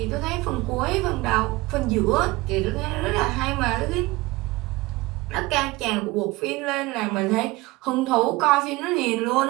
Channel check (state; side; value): quieter; left; 21.1 dB